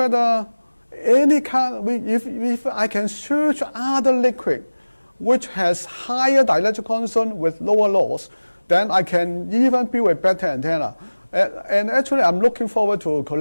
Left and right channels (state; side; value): inverted; both; correlation -1.00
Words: any kind, if I can search other liquid which has higher dielectric constant with lower loss, then I can even build a better antenna. And actually, I'm looking forward to